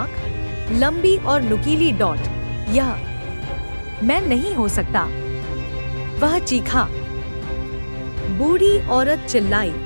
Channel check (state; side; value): inverted; both; correlation -1.00